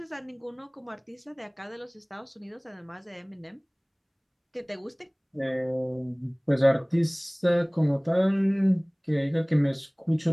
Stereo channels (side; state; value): both; identical; correlation 1.00